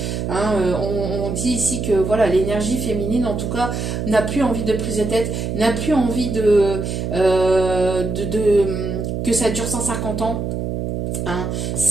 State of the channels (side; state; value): right; noise; hum, 3 dB below the sound